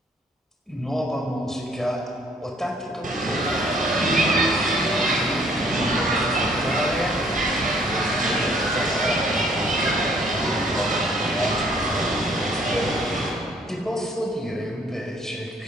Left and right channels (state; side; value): normal; both; correlation 0.61